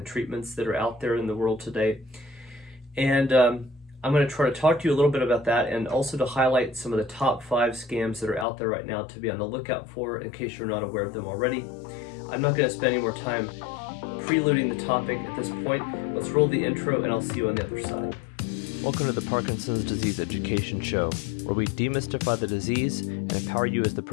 treatments that are out there in the world today. And I'm going to try to talk to you a little bit about that, and also to highlight some of the top 5 scams that are out there right now to be on the lookout for in case you're not aware of them already. I'm not going to spend any more time preluding the topic at this point. Let's roll the intro and I'll see you on the other side. Welcome to the Parkinson's Disease Education Show, where we demystify the disease and empower you as the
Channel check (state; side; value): drops out; right; at 8.5 s